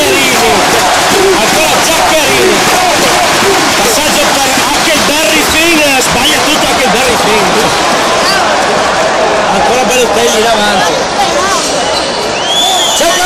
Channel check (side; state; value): both; identical; correlation 1.00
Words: ancora Giaccherini, passaggio per Huckleberry Finn, sbaglia tutto Huckleberry Finn, ancora Balotelli in avanti, cerca